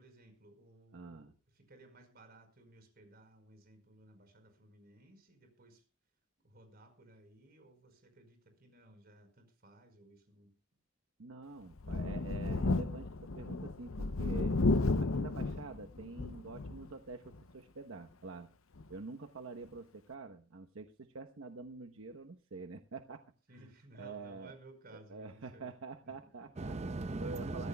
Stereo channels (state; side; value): normal; both; correlation 0.56